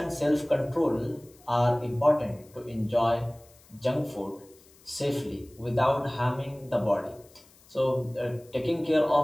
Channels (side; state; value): left; noise; hiss, 27 dB below the sound